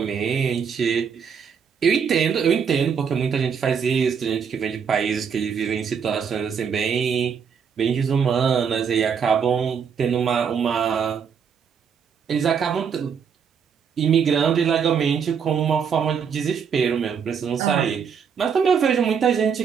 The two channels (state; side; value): quieter; left; 6.9 dB